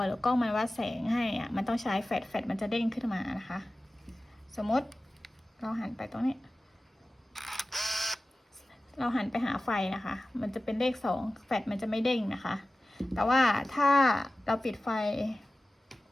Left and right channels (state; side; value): normal; both; correlation 0.96